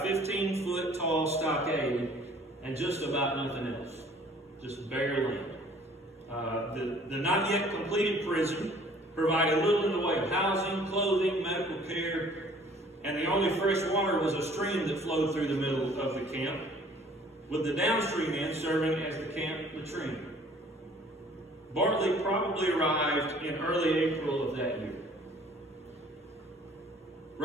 15-foot tall stockade and just about nothing else, just bare land. The not yet completed prison provided little in the way of housing, clothing, medical care, and the only fresh water was a stream that flowed through the middle of the camp, with the downstream end serving as the camp latrine. Bartley probably arrived in early April of that year.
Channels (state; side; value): normal; both; correlation 0.54